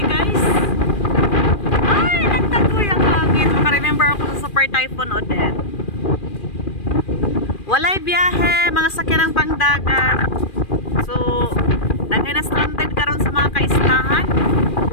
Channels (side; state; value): right; late; 2.4 ms